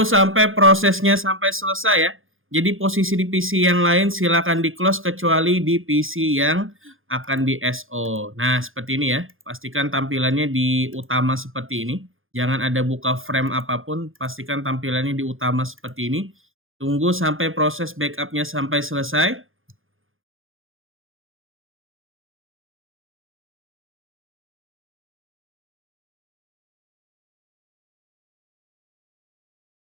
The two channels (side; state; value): left; late; 0.59 ms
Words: sampai prosesnya sampai selesai ya. Jadi posisi di PC yang lain silakan di close kecuali di PC yang akan di SO. Nah, seperti ini ya. Pastikan tampilannya di utama seperti ini. Jangan ada buka frame apapun, pastikan tampilannya di utama seperti ini. Tunggu sampai proses backupnya sampai selesai.